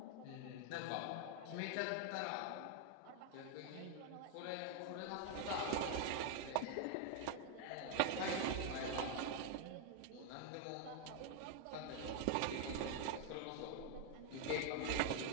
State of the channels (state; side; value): different; both; correlation 0.00